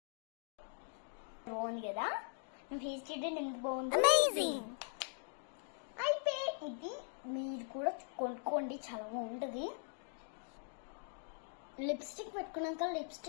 బాగుంది కదా. ఫేస్ ట్రీట్మెంట్ ఎంత బాగుంది, అమేజింగ్. అయితే ఇది మీరు కూడా కొనుక్కోండి, చాలా బాగుంటుంది. లిప్స్టిక్ పెట్టుకున్నాక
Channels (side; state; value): right; silent; digital silence